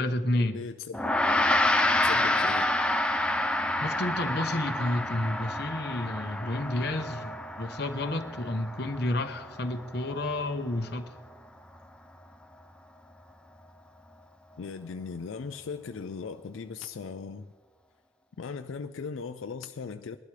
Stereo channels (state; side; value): normal; both; correlation 0.72